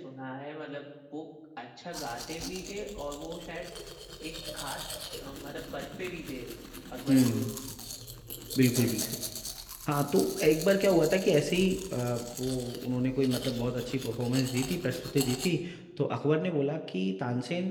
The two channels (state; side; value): identical; both; correlation 1.00